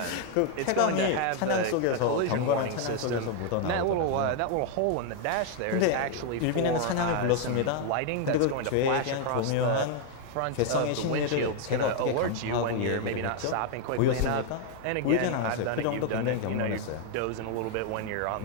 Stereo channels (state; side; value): different; both; correlation 0.00